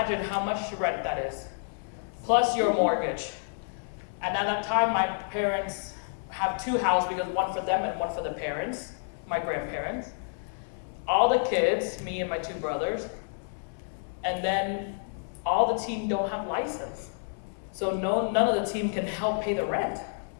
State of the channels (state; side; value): silent; right; digital silence